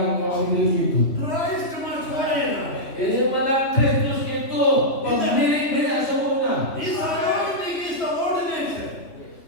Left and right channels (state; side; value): late; right; 3.2 ms